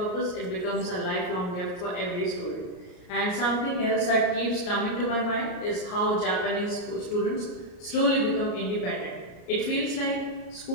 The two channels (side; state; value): right; late; 33 ms